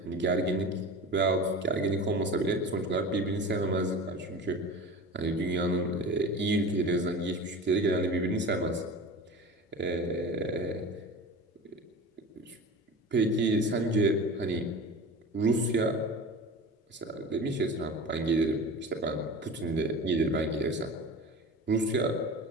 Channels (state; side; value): normal; both; correlation 0.34